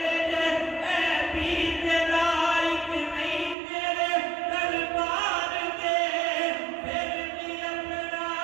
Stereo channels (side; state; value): left; drops out; at 3.6 s